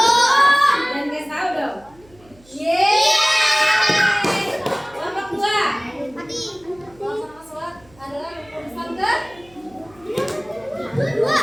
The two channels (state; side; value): noise; right; hum, 28 dB below the sound